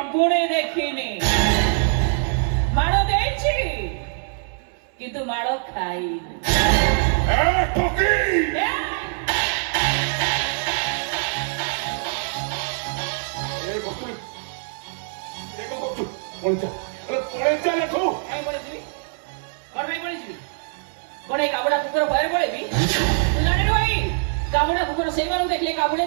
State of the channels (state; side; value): silent; left; 63 dB below the other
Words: देखिनी माड़ो देछि किंतु माड़ो खाइनी ए ठोकी काबुड़ा कुकुर भय पड़े काबुड़ा कुकुर से देखले काबुड़े